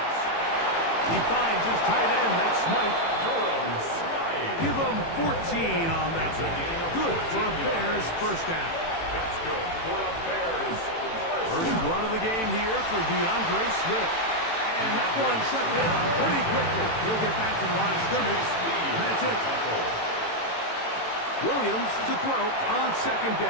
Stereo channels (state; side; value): late; right; 18 ms